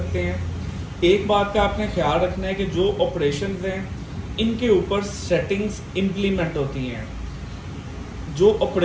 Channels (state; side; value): identical; both; correlation 1.00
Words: हैं। एक बात का आपने ख्याल रखना है कि जो ऑपरेशंस हैं इनके ऊपर सेटिंग्स इम्प्लीमेंट होती हैं। जो